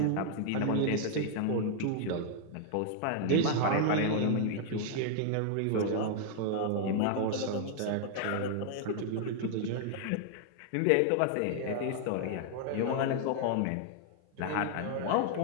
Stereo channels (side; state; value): both; different; correlation 0.00